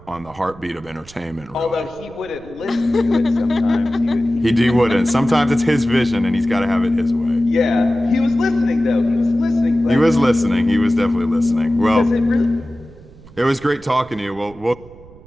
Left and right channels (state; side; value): noise; right; rumble, 22 dB below the sound